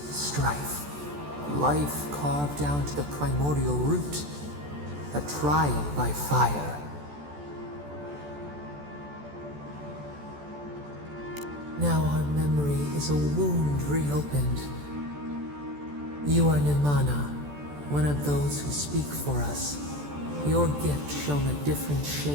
strife, life carved down to the primordial root, a trial by fire. Now our memory is a wound reopened. You are Nimana, one of those who speak for us. Your gift shone a different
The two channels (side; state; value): left; late; 14 ms